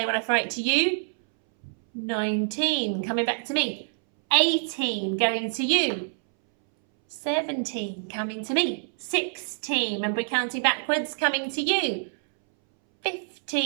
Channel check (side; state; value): left; silent; 61 dB below the other